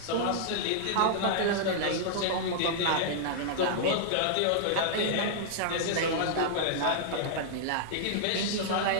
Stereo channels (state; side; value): different; both; correlation -0.02